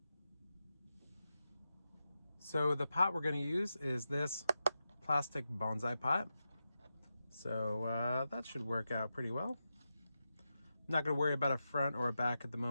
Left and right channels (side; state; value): both; inverted; correlation -0.90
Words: So the pot we're going to use is this plastic bonsai pot. So that should work out pretty well. I'm not going to worry about a front or a back at the